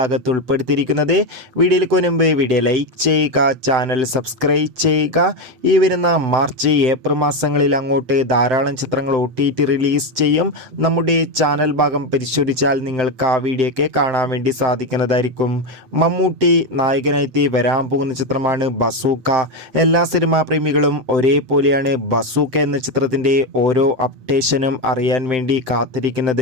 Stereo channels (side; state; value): left; late; 7.8 ms